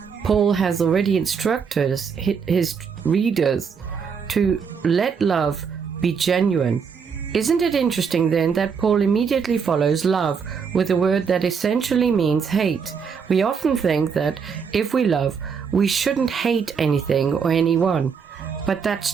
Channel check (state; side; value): quieter; left; 6.2 dB